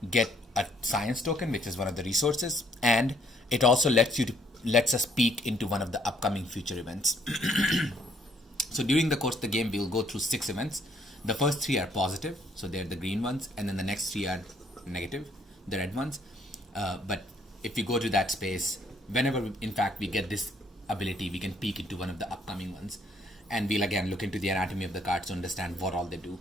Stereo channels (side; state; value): both; normal; correlation 0.66